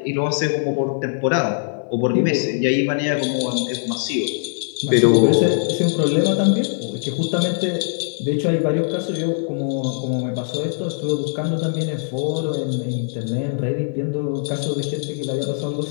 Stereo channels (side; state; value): right; silent; 65 dB below the other